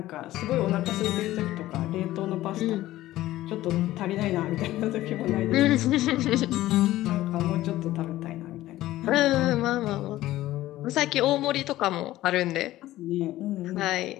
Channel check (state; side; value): quieter; right; 15.5 dB